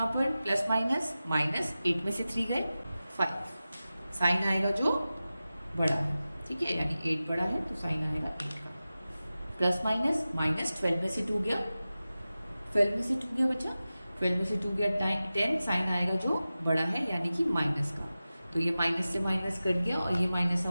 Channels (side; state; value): both; inverted; correlation -0.95